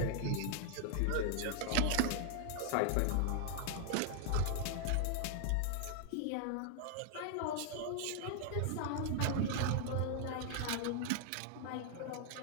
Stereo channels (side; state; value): both; different; correlation 0.00